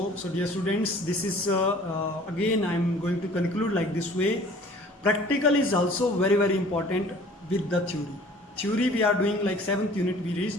So dear students, this is again I am going to conclude like this way. Practical is also very important with the theory. Theory we are doing like 7th unit we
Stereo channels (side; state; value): both; normal; correlation 0.50